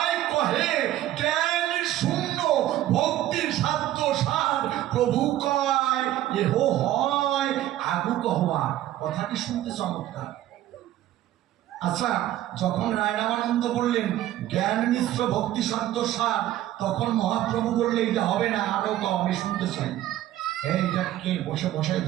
কহে জ্ঞান শূন্য ভক্তির সাধ্য সার। প্রভু কয় এহ হয় আগু কহবার। কথাটি শুনতে চমৎকার। আচ্ছা, যখন রায় রামানন্দ বললেন জ্ঞান মিশ্র ভক্তি সাধ্য সার, তখন মহাপ্রভু বললে এটা হবে না, আরো তো আমি শুনতে চাই। এইটাকে বসে বসাই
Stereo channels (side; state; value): left; quieter; 13.6 dB